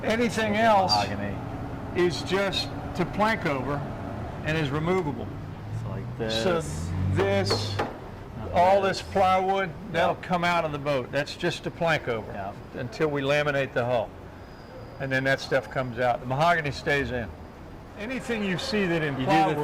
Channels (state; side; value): identical; both; correlation 1.00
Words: Anything else Mahogany. is just to plank over and is removable. So like this. So this, all this plywood, that'll come out of the boat. That's just to plank over until we laminate the hull. And then that stuff comes out. The mahogany stays in. Anything you see that in